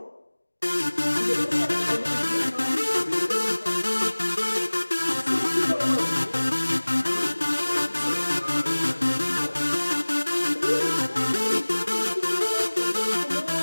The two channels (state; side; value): inverted; both; correlation -1.00